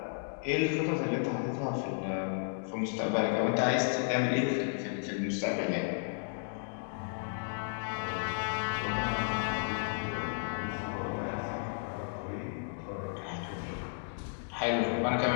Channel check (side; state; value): right; silent; digital silence